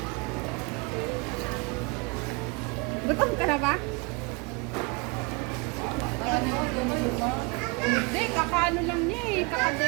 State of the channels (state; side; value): quieter; left; 29.1 dB